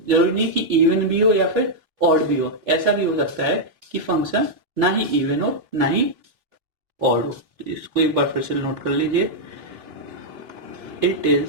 नहीं कि इवन भी हो या फिर ऑड भी हो, ऐसा भी हो सकता है कि फंक्शन ना ही इवन हो ना ही ऑड हो। इसको एक बार फिर से नोट कर लीजिए, it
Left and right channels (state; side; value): late; left; 3.1 ms